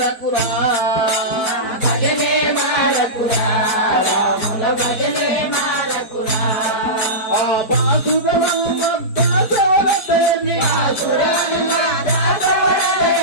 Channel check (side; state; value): right; late; 4.6 ms